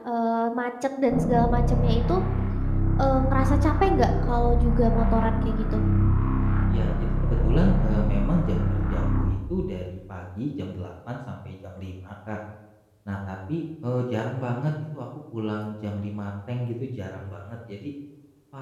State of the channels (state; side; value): identical; both; correlation 1.00